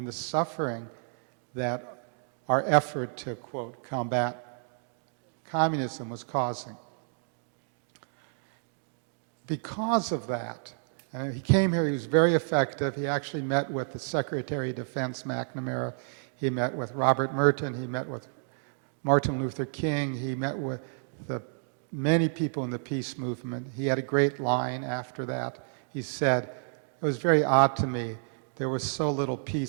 the suffering that our effort to, quote, combat communism was causing. Because of that, he came here, he was very effective. He actually met with the Secretary of Defense, McNamara. He met with Robert Merton. He met with Martin Luther King. He met with many people in the peace movement. He had a great line after that. He said, it was very odd to me, there was so little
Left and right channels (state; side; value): silent; left; digital silence